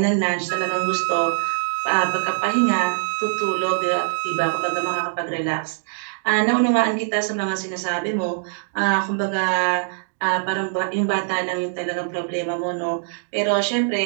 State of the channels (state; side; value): silent; left; digital silence